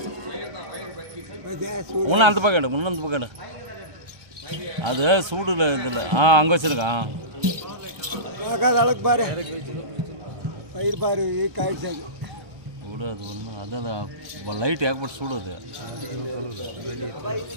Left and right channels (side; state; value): left; late; 1.3 ms